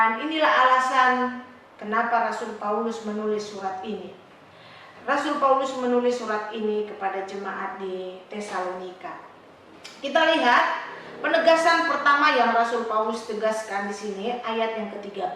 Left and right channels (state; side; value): identical; both; correlation 1.00